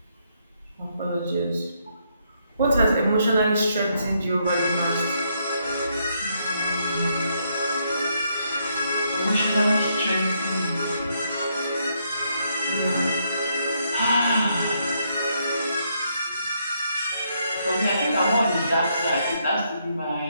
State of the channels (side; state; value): both; inverted; correlation -0.75